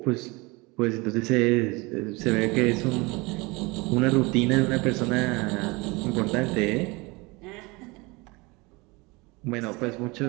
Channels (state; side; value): quieter; left; 25.1 dB